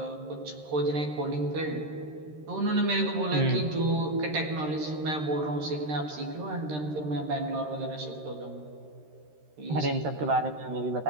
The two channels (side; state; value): left; late; 13 ms